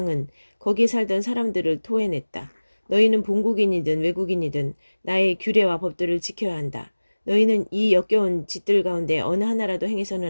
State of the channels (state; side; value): inverted; both; correlation -1.00